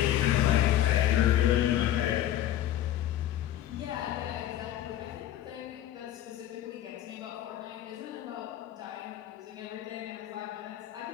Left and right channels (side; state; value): right; quieter; 12.4 dB